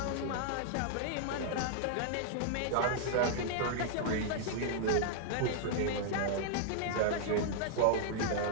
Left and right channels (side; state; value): both; different; correlation -0.01